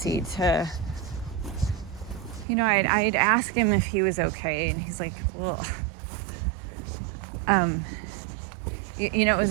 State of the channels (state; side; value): drops out; left; at 2.5 s